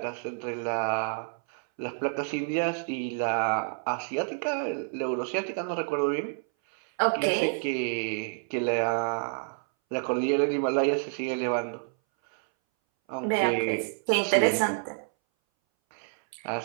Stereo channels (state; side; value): silent; left; 59 dB below the other